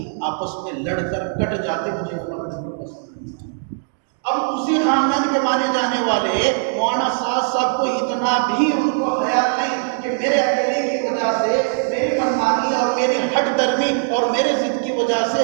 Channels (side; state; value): left; silent; digital silence